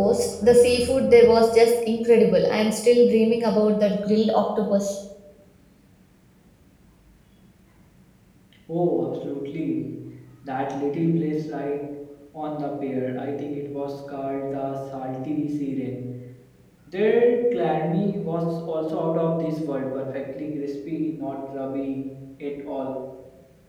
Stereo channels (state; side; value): identical; both; correlation 1.00